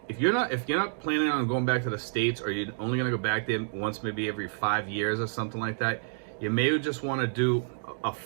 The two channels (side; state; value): left; silent; digital silence